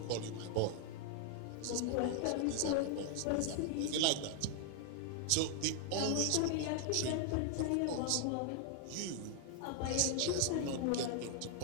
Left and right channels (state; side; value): different; both; correlation 0.00